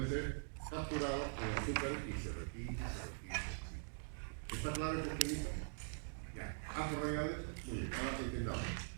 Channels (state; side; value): silent; left; digital silence